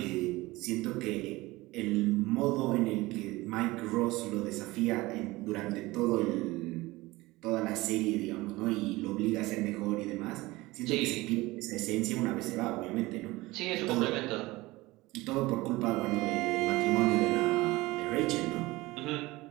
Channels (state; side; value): quieter; left; 20.3 dB